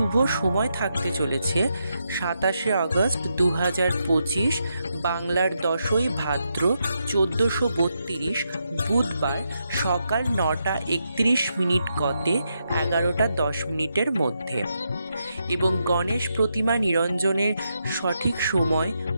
সময় থাকতে চলেছে 27শে অগস্ট 2025, বাংলার 10ই ভাদ্র 1432, বুধবার সকাল 9টা 31 গতে 11টা 10 মধ্যে। এবং গণেশ প্রতিমা নিরঞ্জনের সঠিক সময়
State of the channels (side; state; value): both; inverted; correlation -0.83